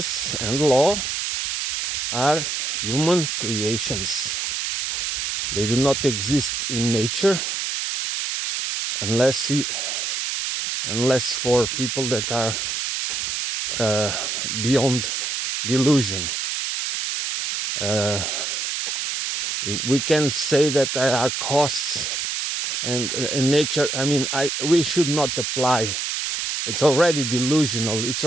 and law are human creations. They do not exist in nature unless for people that are beyond delusion. We can say that there are costs, and in nature, we should not apply. It's already delusional. It's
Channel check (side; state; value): right; noise; hiss, 2 dB below the sound